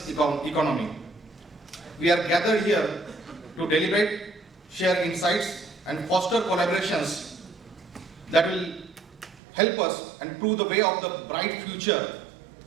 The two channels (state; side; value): drops out; left; at 9.3 s